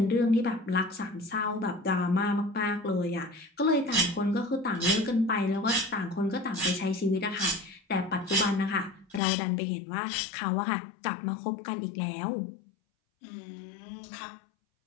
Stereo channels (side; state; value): right; drops out; at 9.2 s